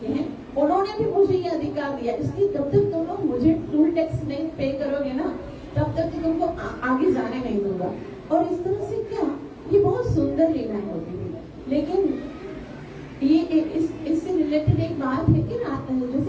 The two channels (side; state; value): both; identical; correlation 1.00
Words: हैं, उन्होंने भी मुझे ये अधिकार दिया, इसलिए तब तक तुम लोग मुझे टोल टैक्स नहीं पे करोगे ना, तब तक तुमको आगे जाने नहीं दूंगा। और इस तरह से क्या, ये बहुत सुंदर लीलाएं होती थी। लेकिन ये इससे रिलेटेड एक बात है कि